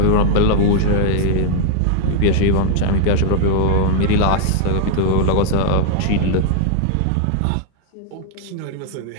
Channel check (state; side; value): different; both; correlation -0.01